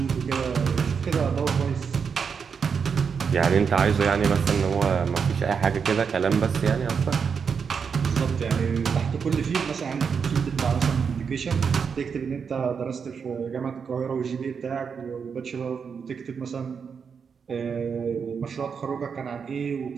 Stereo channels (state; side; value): quieter; left; 6.3 dB